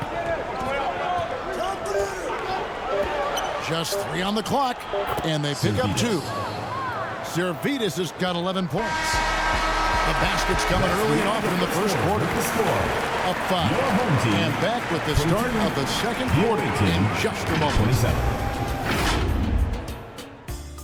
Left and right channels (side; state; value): both; identical; correlation 1.00